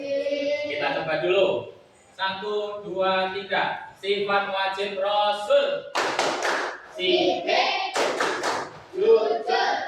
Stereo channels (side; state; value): both; identical; correlation 1.00